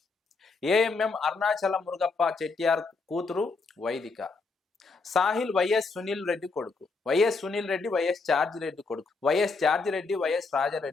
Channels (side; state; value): right; quieter; 4.1 dB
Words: ఏఎంఎం అరుణాచల మురుగప్ప చెట్టియార్ కూతురు వైదిక. సాహిల్ వైఎస్ సునీల్ రెడ్డి కొడుకు. YS Sunil Reddy YS George Reddy కొడుకు. YS George Reddy YS